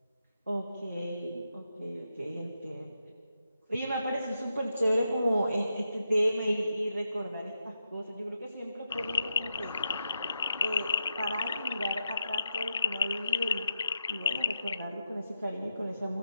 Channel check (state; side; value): inverted; both; correlation -0.85